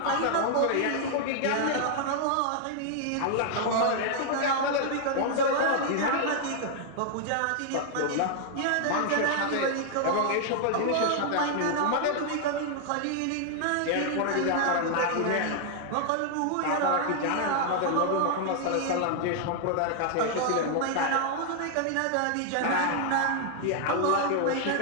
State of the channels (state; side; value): different; both; correlation 0.00